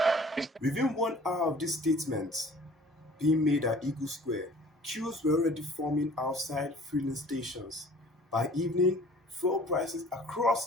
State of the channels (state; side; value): normal; both; correlation 0.50